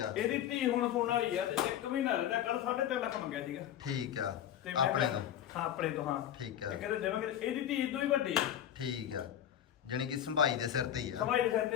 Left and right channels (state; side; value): quieter; right; 10.6 dB